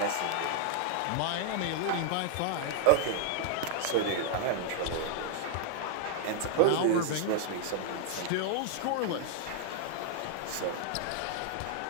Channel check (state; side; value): different; both; correlation 0.00